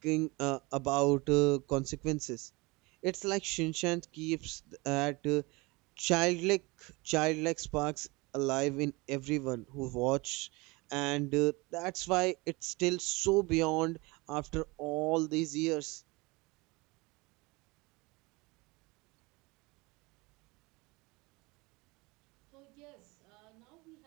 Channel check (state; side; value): quieter; left; 24.7 dB